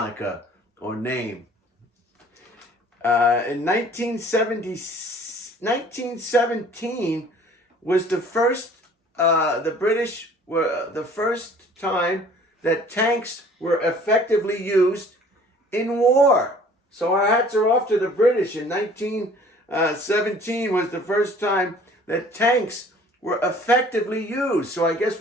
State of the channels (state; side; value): normal; both; correlation 0.52